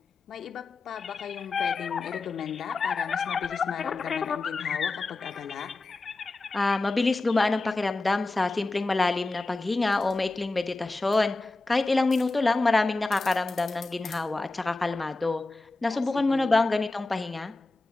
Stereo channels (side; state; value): right; quieter; 3.3 dB